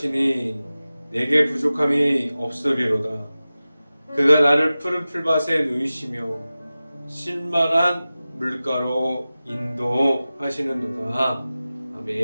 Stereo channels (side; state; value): both; inverted; correlation -0.96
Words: 내게 부족함이 없으리로다. 그가 나를 푸른 풀밭에 누이시며 쉴만한 물가로 인도하시는도다.